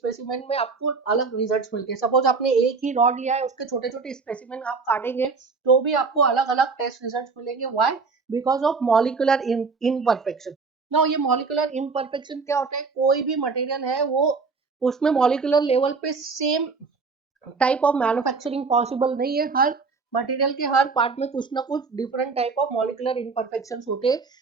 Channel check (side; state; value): left; quieter; 4.6 dB